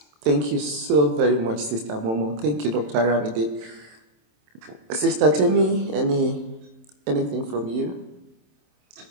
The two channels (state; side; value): late; left; 27 ms